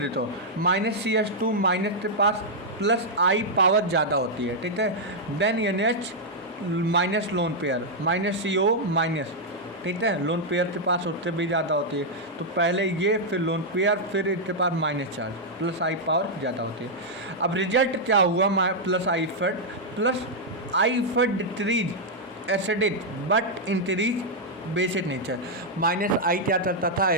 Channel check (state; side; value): normal; both; correlation -0.04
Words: -CS2 माइनस के पास प्लस आई पावर ज़्यादा होती है, ठीक है। Then NH minus lone pair -CO minus, ठीक है, लोन पेयर के पास उससे भी ज़्यादा होती है। तो पहले ये, फिर लोन पेयर, फिर इसके पास माइनस चार्ज, प्लस आई पावर ज़्यादा होती है। अब रिजल्ट क्या हुआ, प्लस आई फट decrease acidic but increase basic nature. Minus I क्या करता था,